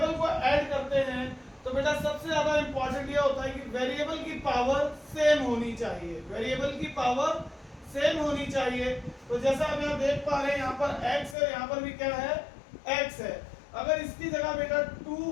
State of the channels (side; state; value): right; drops out; at 11.4 s